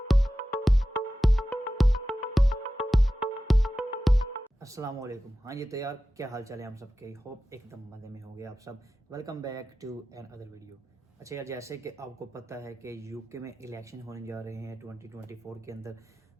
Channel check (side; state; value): both; normal; correlation 0.94